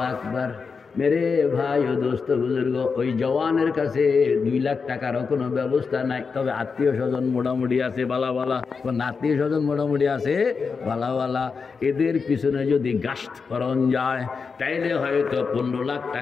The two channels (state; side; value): quieter; right; 5.2 dB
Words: আকবার। মেরে ভাই ও দোস্ত বুজুর্গ, ওই জওয়ানের কাছে 2 লাখ টাকারও কোনো ব্যবস্থা নাই। তবে আত্মীয় স্বজন মোটামুটি আছে বালা বালা, আত্মীয় স্বজন মোটামুটি আছে বালা বালা। এদের পিছনে যদি গাস্ত করণ যায় তাইলে হয়তো 15 লাখ